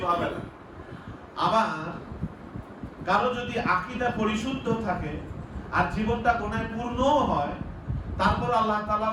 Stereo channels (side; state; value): both; identical; correlation 1.00